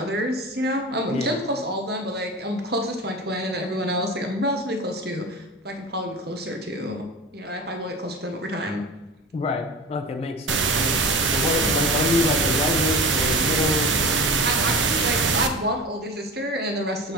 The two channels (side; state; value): both; normal; correlation 0.32